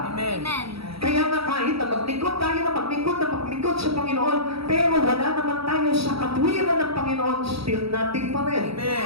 Amen. Kaya nga kahit na maglingkod tayo na maglingkod sa Panginoon, pero wala naman tayo sa katwiran ng Panginoon, still nothing pa rin. Amen.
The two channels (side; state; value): left; late; 0.76 ms